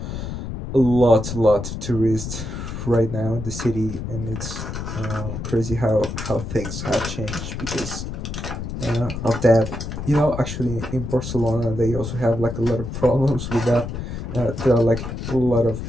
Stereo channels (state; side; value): noise; left; rumble, 6 dB below the sound